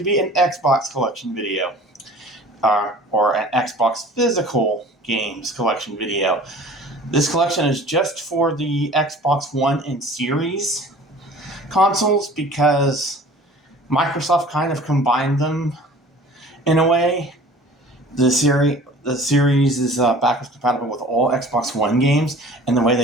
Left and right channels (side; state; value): both; normal; correlation 0.45